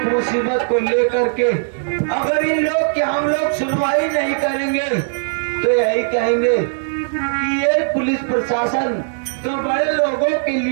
मुसीबत को लेकर के अगर ये लोग कि हम लोग सुनवाई नहीं करेंगे तो यही कहेंगे कि ये पुलिस प्रशासन तो बड़े लोगों के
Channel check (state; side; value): silent; left; digital silence